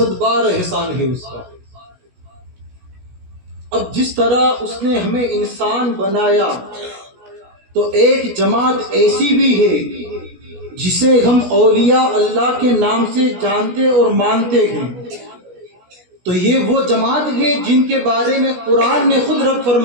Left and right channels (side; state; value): left; late; 16 ms